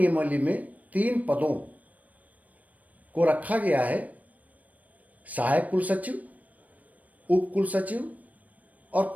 में 3 पदों को रखा गया है: सहायक कुलसचिव, उप कुलसचिव और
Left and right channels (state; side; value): late; left; 0.072 ms